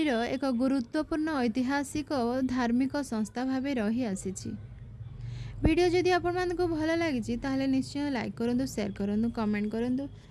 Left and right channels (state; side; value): identical; both; correlation 1.00